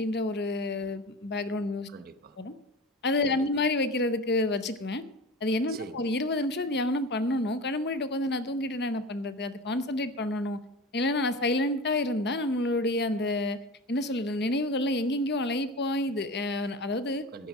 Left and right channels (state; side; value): normal; both; correlation 0.31